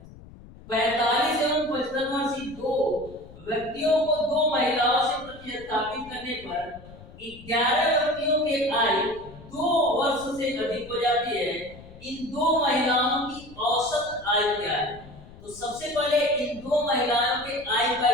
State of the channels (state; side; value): noise; left; rumble, 19 dB below the sound